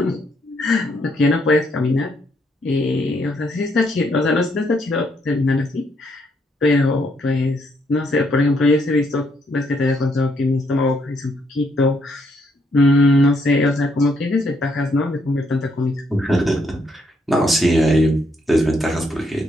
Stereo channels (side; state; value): both; normal; correlation 0.73